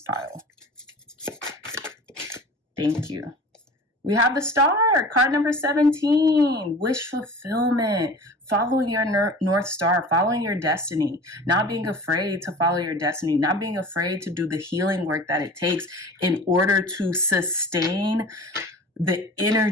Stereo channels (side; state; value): both; normal; correlation 0.40